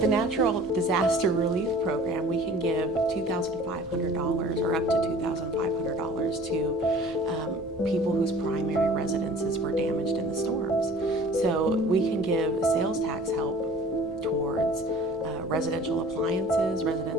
natural disaster relief program, we can give $2,500 or up to $2,500 to people whose primary residences were damaged in the storms. So we can give sales tax help towards residential appliances,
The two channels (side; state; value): both; normal; correlation 0.47